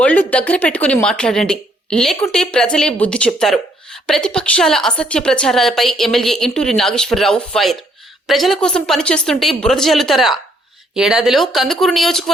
దగ్గర పెట్టుకుని మాట్లాడండి, లేకుంటే ప్రజలే బుద్ధి చెప్తారు. ప్రతిపక్షాల అసత్య ప్రచారాలపై ఎమ్మెల్యే ఇంటూరి నాగేశ్వరరావు ఫైర్. ప్రజల కోసం పనిచేస్తుంటే బురద జల్లుతారా? ఏడాదిలో కందుకూరు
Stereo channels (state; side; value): normal; both; correlation 0.68